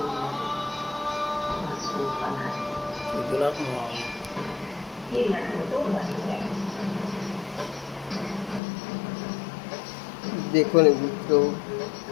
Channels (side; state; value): right; drops out; at 8.6 s